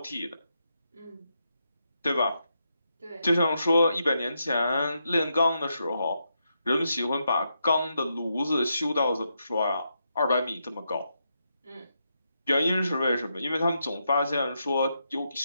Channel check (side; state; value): both; inverted; correlation -0.83